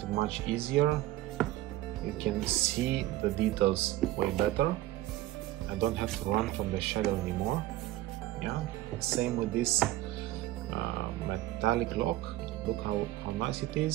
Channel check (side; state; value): left; quieter; 15.9 dB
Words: it much easier. You can see the details way better. I don't have to run from the shadow anymore. Same with this metallic lock. Look how nice it